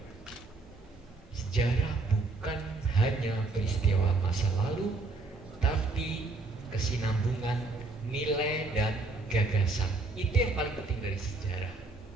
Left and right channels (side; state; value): left; quieter; 3.4 dB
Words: sejarah bukan hanya peristiwa masa lalu, tapi kesinambungan nilai dan gagasan. Itu yang paling penting dari sejarah,